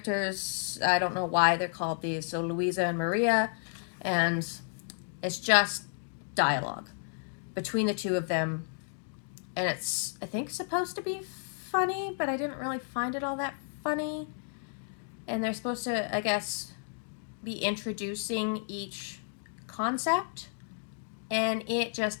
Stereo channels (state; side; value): silent; right; digital silence